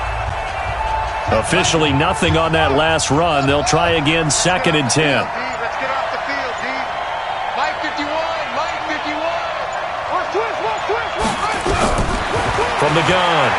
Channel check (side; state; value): both; identical; correlation 1.00